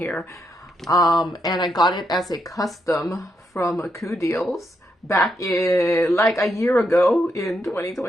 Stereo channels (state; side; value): normal; both; correlation 0.80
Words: And I got it as a custom from Coodeals back in like a year ago in